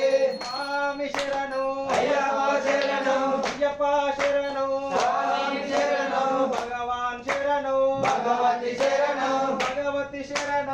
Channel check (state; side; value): identical; both; correlation 1.00